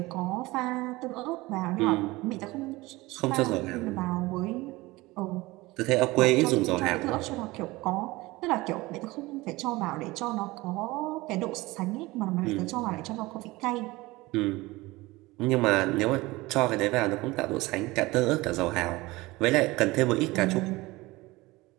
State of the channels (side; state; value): left; quieter; 20.8 dB